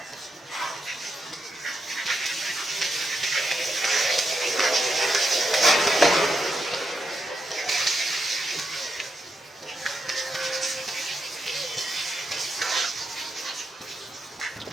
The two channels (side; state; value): both; normal; correlation 0.84